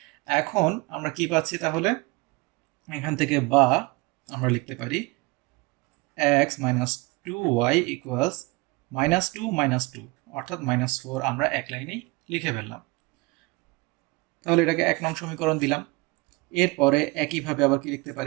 এখন আমরা কি পাচ্ছি তাহলে এখান থেকে, বা আমরা লিখতে পারি x মাইনাস 2y ইকুয়ালস -2 -2 অর্থাৎ -4 আমরা এক লাইনেই লিখে ফেললাম। তাহলে এটাকে 1 নং সমীকরণ দিলাম। এরপরে একইভাবে আবার কি লিখতে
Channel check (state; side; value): quieter; left; 24.4 dB